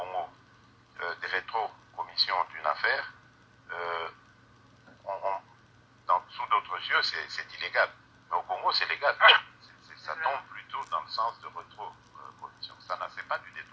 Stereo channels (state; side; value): identical; both; correlation 1.00